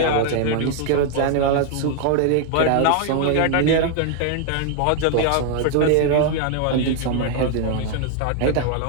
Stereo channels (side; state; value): both; different; correlation 0.00